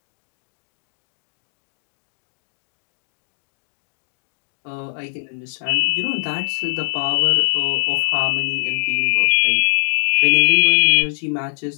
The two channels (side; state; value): right; silent; digital silence